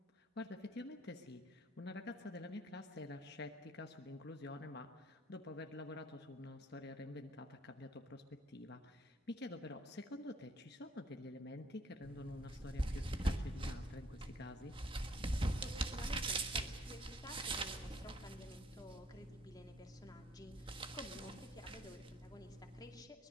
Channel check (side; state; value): both; normal; correlation 0.64